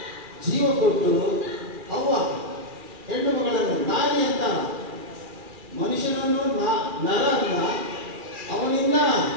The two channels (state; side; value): late; left; 2.4 ms